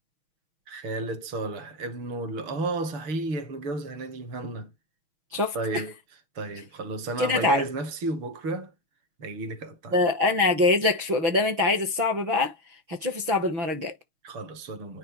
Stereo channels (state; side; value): late; left; 6.3 ms